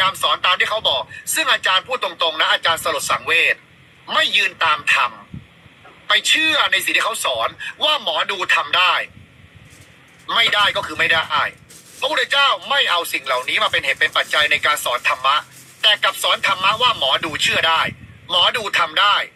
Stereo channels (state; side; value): identical; both; correlation 1.00